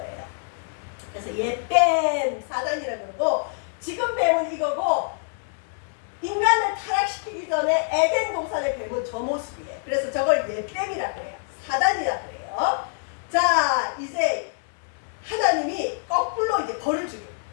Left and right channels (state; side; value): silent; right; 61 dB below the other